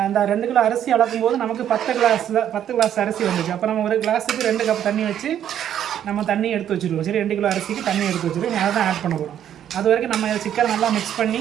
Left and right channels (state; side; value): quieter; left; 10.2 dB